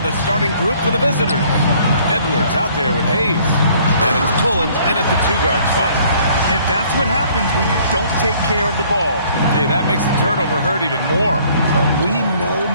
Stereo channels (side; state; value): both; inverted; correlation -0.59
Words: starting group for the visitors. Edwards out there with Hayes. And it's Pullen in at the two-guard spot. And that's what happens when you don't take care of the ball. Hey, that makes the turnover hurt even more. We know